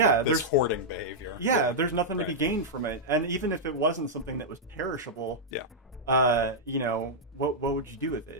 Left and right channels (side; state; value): both; normal; correlation -0.07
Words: hoarding behavior? Yeah, there's nothing to be gained from it. And even if it wasn't something that was perishable, what would you do with